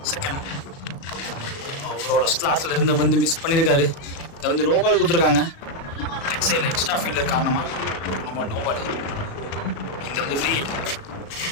செகண்ட் அவரோட ஸ்லாட்ல இருந்த வந்து மிஸ் பண்ணியிருக்காரு. இதை வந்து நோபால் கொடுத்துருக்காங்க. லெக் சைடில் எக்ஸ்ட்ரா ஃபீல்டர் காரணமாக நோபால். இந்த வந்து ஃப்ரீ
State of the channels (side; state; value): right; late; 36 ms